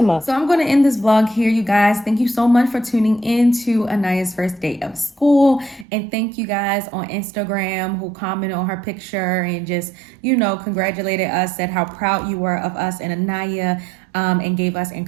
So I'm going to end this vlog here, you guys. Thank you so much for tuning in to Aniya's first day of school. And thank you guys on Instagram who commented on her picture and just, congratulated us, said how proud you were of us and Aniya, and gave us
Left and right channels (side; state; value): left; drops out; at 5.9 s